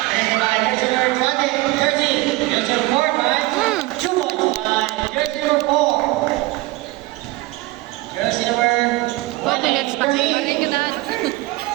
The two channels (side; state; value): left; quieter; 19.8 dB